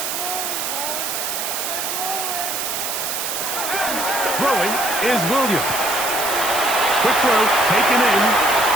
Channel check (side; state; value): right; noise; hiss, 3 dB below the sound